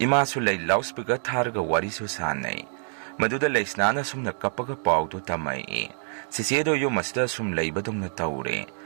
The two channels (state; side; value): silent; left; digital silence